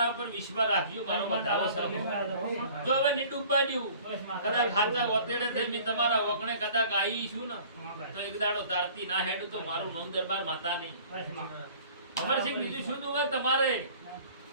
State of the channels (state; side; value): inverted; both; correlation -0.49